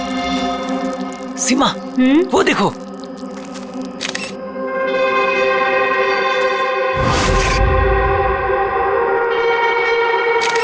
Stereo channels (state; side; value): identical; both; correlation 1.00